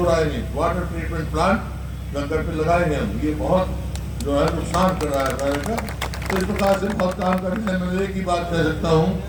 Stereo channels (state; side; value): identical; both; correlation 1.00